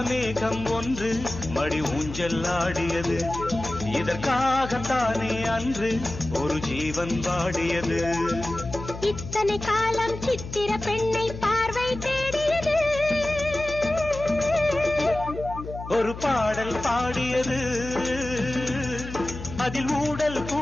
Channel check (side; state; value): left; noise; hum, 11 dB below the sound